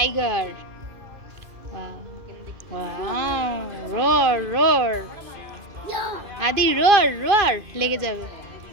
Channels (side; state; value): left; late; 2.5 ms